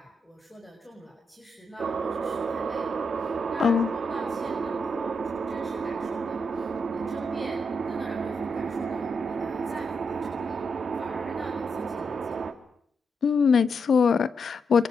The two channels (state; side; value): normal; both; correlation 0.82